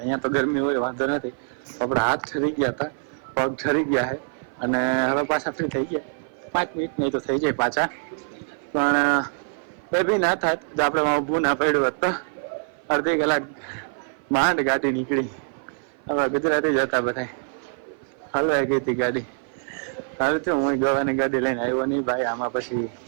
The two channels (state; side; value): silent; left; 56 dB below the other